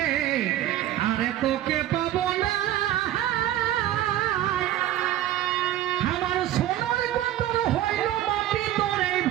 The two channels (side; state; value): left; quieter; 13.1 dB